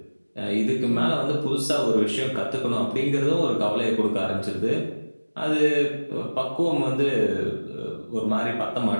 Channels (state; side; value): inverted; both; correlation -1.00